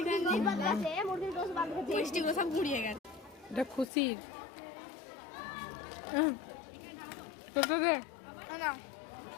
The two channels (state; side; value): drops out; right; at 3.9 s